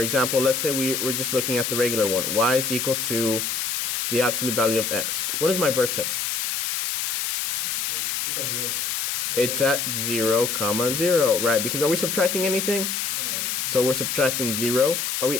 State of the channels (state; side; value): noise; left; hiss, 1 dB below the sound